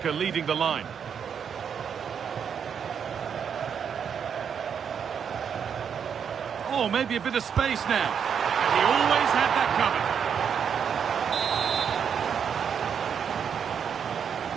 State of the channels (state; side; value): quieter; left; 7.5 dB